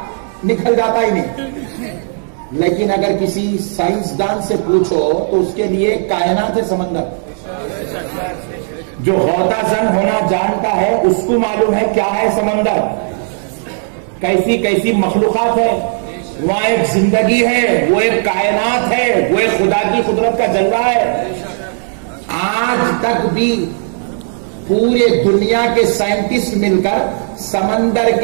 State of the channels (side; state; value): left; silent; digital silence